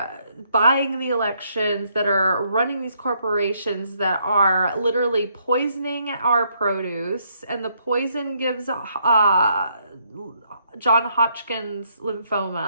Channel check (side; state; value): both; inverted; correlation -0.72